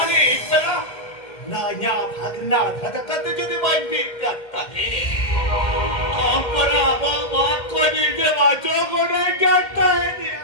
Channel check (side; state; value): right; late; 2.1 ms